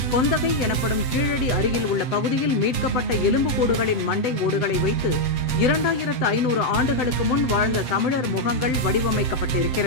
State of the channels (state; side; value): late; right; 7.9 ms